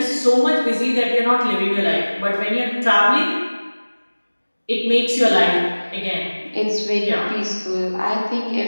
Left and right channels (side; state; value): both; inverted; correlation -1.00